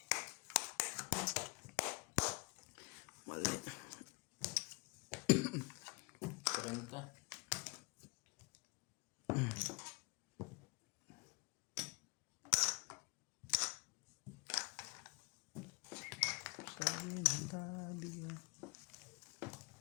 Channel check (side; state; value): right; quieter; 29.9 dB